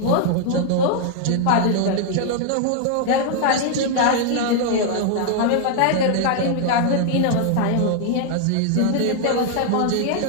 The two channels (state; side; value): different; both; correlation 0.00